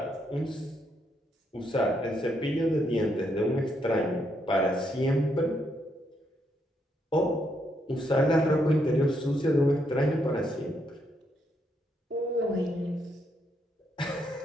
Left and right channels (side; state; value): both; normal; correlation 0.77